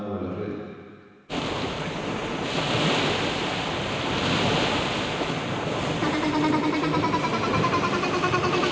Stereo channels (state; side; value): identical; both; correlation 1.00